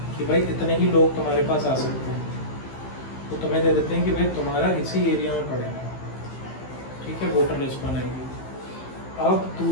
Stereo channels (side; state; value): right; late; 15 ms